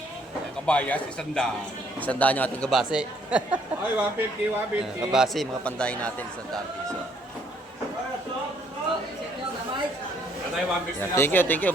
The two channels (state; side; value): normal; both; correlation 0.66